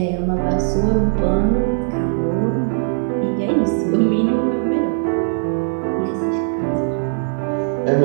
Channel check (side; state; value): left; silent; digital silence